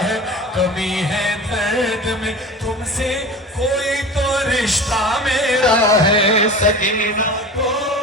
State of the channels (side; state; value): both; normal; correlation 0.35